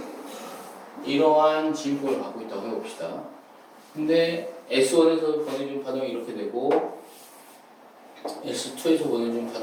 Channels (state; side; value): identical; both; correlation 1.00